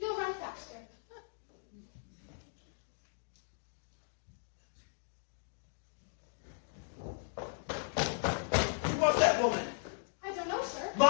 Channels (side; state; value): right; silent; digital silence